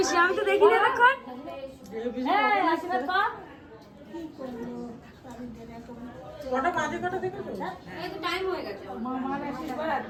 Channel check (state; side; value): identical; both; correlation 1.00